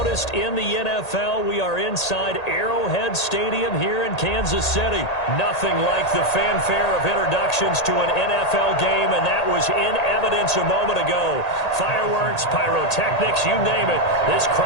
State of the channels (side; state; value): right; late; 1.8 ms